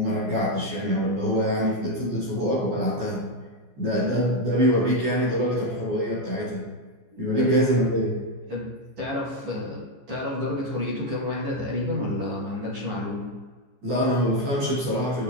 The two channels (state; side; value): late; left; 15 ms